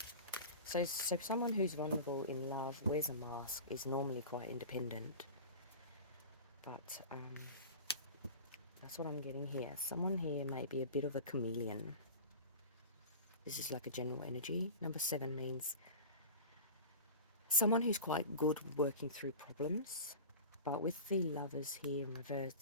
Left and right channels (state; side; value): inverted; both; correlation -0.32